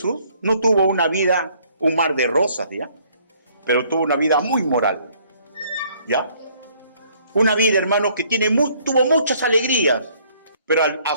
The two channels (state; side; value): inverted; both; correlation -0.63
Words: no tuvo una vida, un mar de rosas, ¿ya? Pero tuvo una vida muy moral, ¿ya? Una vida, hermanos, que tuvo muchas alegrías, pero a